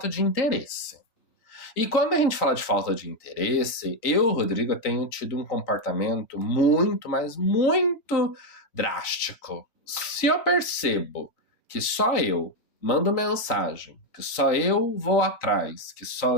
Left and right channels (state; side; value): late; right; 3.9 ms